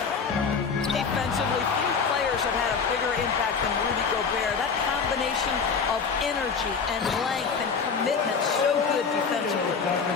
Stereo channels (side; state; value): right; quieter; 5.6 dB